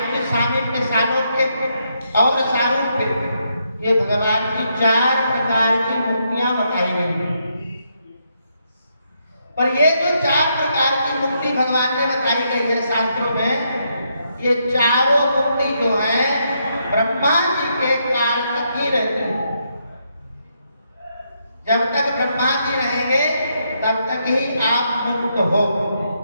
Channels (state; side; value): inverted; both; correlation -0.78